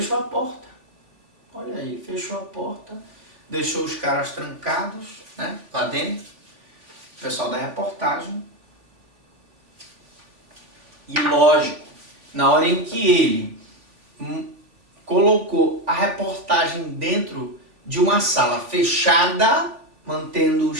a porta, olha aí, fechou a porta, deixou os caras trancados, né, lá dentro, o pessoal da reportagem. E lógico, na hora em que ele colocou a reportagem dentro de uma sala fechada,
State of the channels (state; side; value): late; left; 3.5 ms